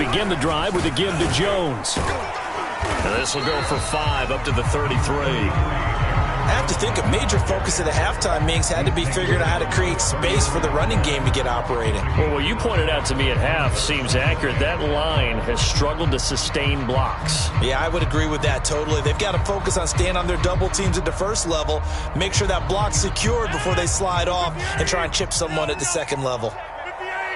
the drive with a give to Jones. And this will go for 5 up to the 33. I have to think a major focus of the halftime meetings had to be figuring out how to create space for the running game to get operating. Well, what you pointed out to me at half seems accurate. That line has struggled to sustain blocks. Yeah, I would agree with that totally. They've got to focus on staying on their double teams at the first level, make sure that block's secured before they slide off and try and chip someone at the second level.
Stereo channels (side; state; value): both; identical; correlation 1.00